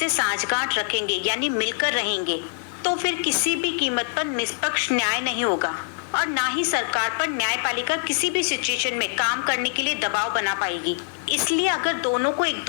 साझगांठ रखेंगे यानी मिलकर रहेंगे तो फिर किसी भी कीमत पर निष्पक्ष न्याय नहीं होगा और ना ही सरकार पर न्यायपालिका किसी भी सिचुएशन में काम करने के लिए दबाव बना पाएगी। इसलिए अगर दोनों को एक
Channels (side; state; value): right; silent; 62 dB below the other